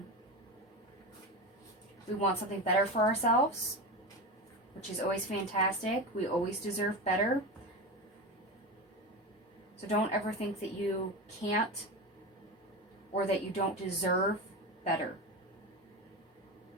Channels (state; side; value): normal; both; correlation 0.22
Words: something better for ourselves, which is always fantastic. We always deserve better. So don't ever think that you can't or that you don't deserve better.